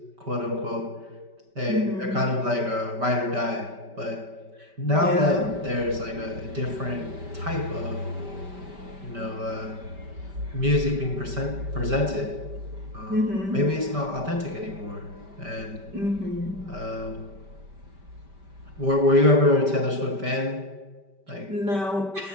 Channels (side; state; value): left; late; 5.1 ms